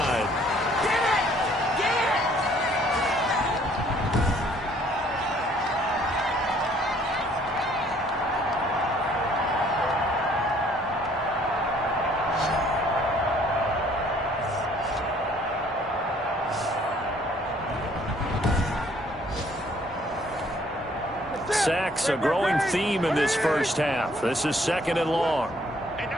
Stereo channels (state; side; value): normal; both; correlation 0.61